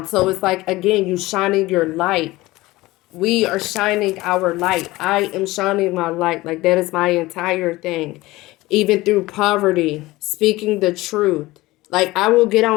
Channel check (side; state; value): right; quieter; 19.3 dB